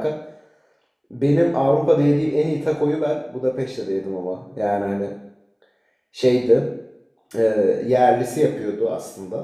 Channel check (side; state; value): both; identical; correlation 1.00